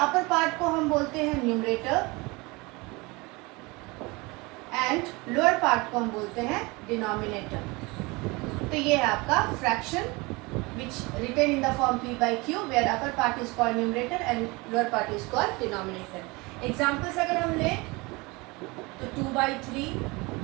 अपर पार्ट को हम बोलते हैं न्यूमरेटर एंड लोअर पार्ट को हम बोलते हैं डिनोमिनेटर। तो ये है आपका fraction which written in the form p/q where upper part is called numerator and lower part is called denominator. Examples अगर हम लें तो 2/3,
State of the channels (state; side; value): quieter; left; 24.9 dB